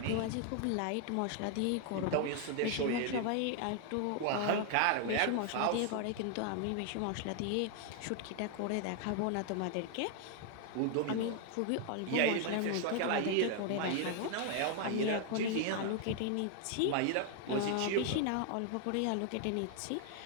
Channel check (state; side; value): different; both; correlation 0.00